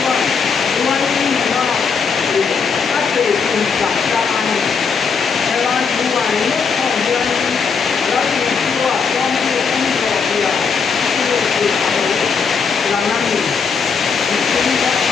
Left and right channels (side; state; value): right; quieter; 5.7 dB